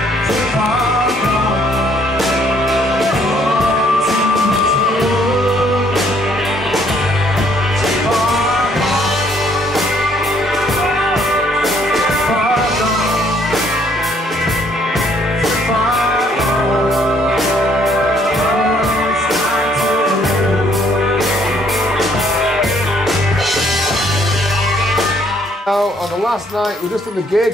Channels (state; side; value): normal; both; correlation 0.65